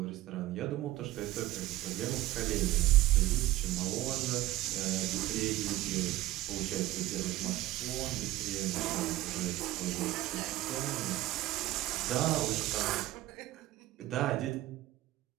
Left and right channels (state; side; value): quieter; left; 16.5 dB